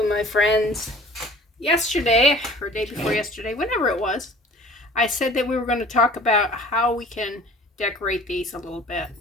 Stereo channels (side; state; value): both; normal; correlation 0.48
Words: friends. Yesterday, or day before yesterday, whenever it was, I said that we were going to talk about how we can decorate these a little bit.